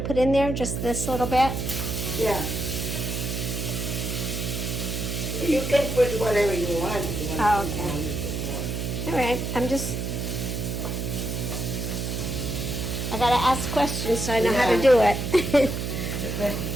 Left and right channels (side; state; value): right; noise; hum, 3 dB below the sound